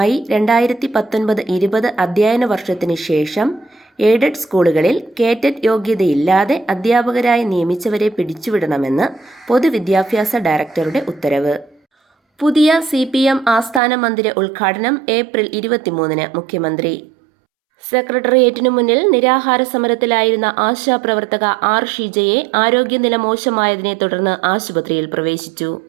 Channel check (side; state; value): left; drops out; at 13.8 s